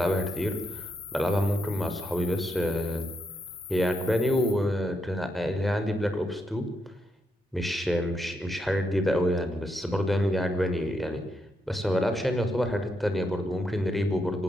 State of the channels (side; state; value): both; normal; correlation 0.80